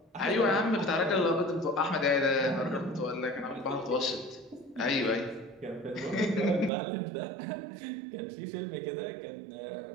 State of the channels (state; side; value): drops out; left; at 6.7 s